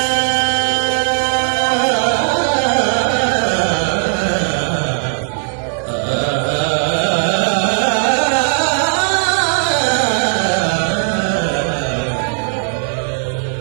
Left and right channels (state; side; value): silent; left; 66 dB below the other